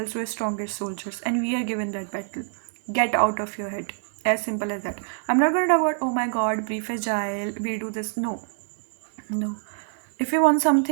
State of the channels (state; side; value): silent; left; digital silence